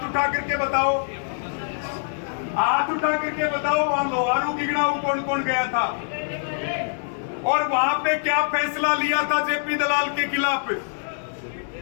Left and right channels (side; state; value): right; silent; digital silence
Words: उठा करके बताओ, हाथ उठा करके बताओ। वहां लोहारू गिगड़ाऊ कौन कौन गया था और वहां पे क्या फैसला लिया था जेपी दलाल के खिलाफ?